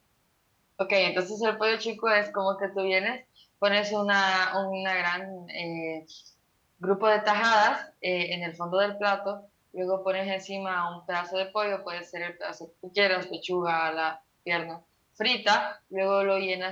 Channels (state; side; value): identical; both; correlation 1.00